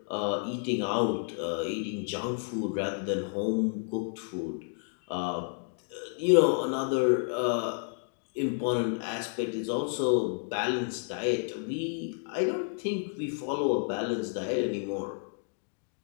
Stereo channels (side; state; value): right; silent; 57 dB below the other